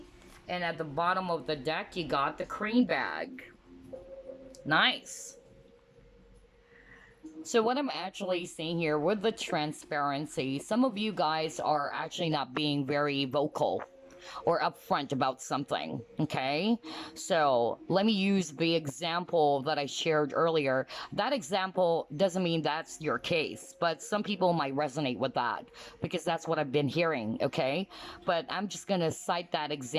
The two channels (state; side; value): identical; both; correlation 1.00